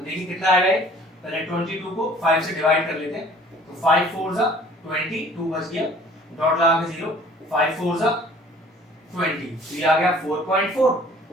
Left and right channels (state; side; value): normal; both; correlation 0.52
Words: देखिए कितना आ गया, पहले 22 को 5 से डिवाइड कर लेते हैं, तो 5 4 जा 20, 2 बच गया, डॉट लगा के 0, 5 4 जा 20, तो ये आ गया 4.4,